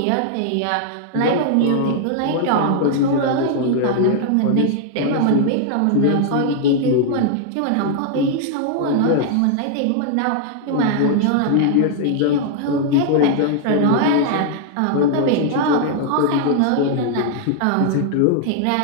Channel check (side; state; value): both; different; correlation -0.01